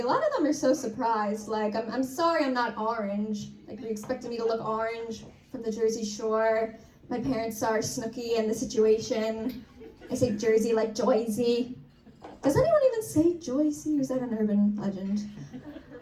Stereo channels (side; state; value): both; identical; correlation 1.00